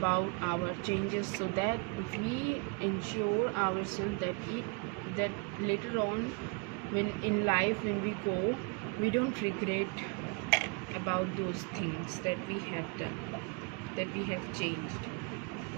our changes, so that we ensure ourselves that later on, when in life, when we go, we don't regret about those things that we have done, that we have changed.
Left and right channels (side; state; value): left; quieter; 31.9 dB